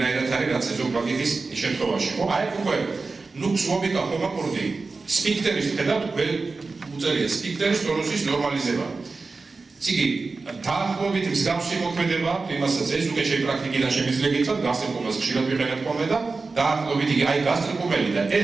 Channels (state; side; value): quieter; left; 4.0 dB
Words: არის რაც ეზოფაგიტის შემთხვევაში, ხო? აი უკვე ნუქსვობიკა ჰომაკორდი სფინქტერის ხედავთ უწერია სფინქტერის ტონუსის ნორმალიზება. ციგი დაახლოებით მსგავსი მოქმედება იმასაც ეს უკვე შეი პრაქტიკიდან შემიძლია გითხრათ გასტრიკომას ხშირად ვიყენებ ხოლმე და დაახლოებით იგი აი გასტრიკომელი და